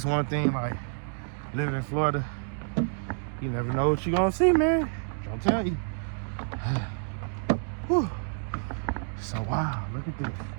one thing, like, living in Florida, you never know what you're gonna see, man. Don't tell you. Whew. So, wow, look at this.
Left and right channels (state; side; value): silent; left; 59 dB below the other